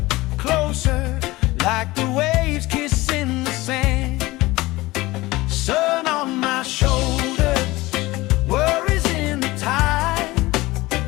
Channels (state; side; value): quieter; right; 19.8 dB